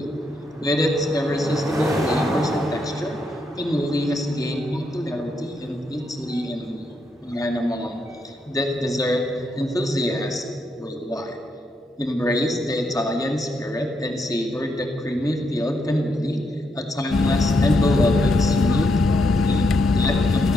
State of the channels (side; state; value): both; normal; correlation 0.79